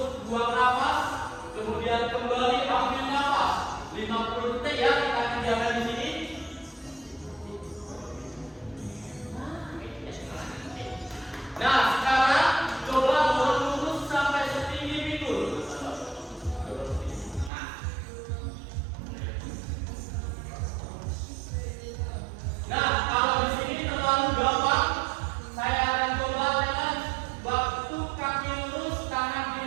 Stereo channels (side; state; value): left; drops out; at 17.5 s